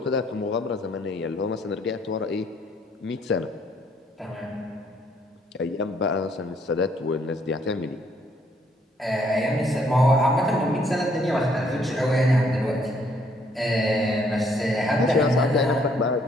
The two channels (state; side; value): normal; both; correlation 0.67